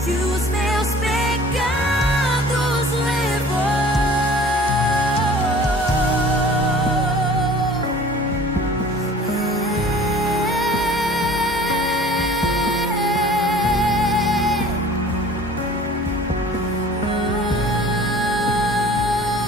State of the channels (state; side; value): normal; both; correlation 0.47